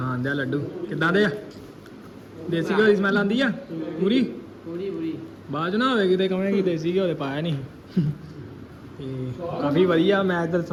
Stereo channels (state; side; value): identical; both; correlation 1.00